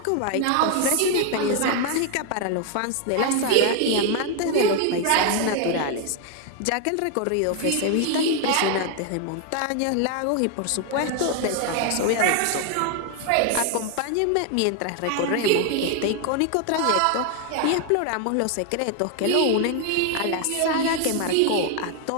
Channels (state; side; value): different; both; correlation 0.01